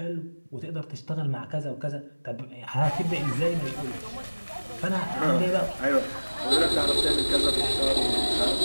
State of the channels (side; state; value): both; inverted; correlation -1.00